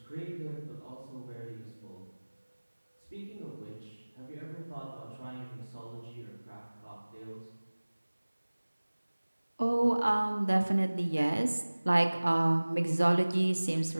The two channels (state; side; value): inverted; both; correlation -1.00